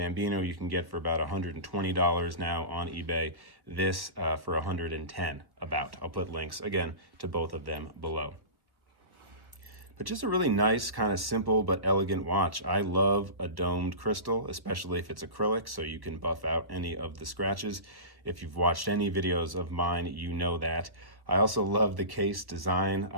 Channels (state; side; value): late; left; 1.1 ms